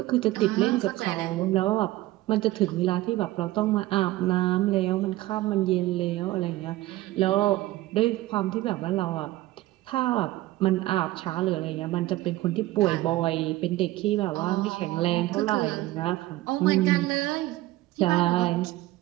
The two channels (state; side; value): quieter; left; 17.2 dB